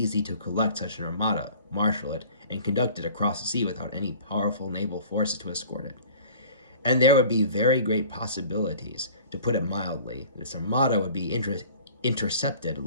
to collect such an armada, marshal it, and conduct it across the sea without any powerful naval forces to escort it. And there would be very great possibilities, to put it mildly, this armada would be intercepted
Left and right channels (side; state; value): both; inverted; correlation -0.46